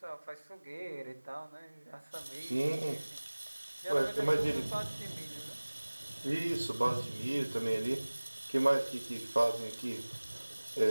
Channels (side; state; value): both; inverted; correlation -1.00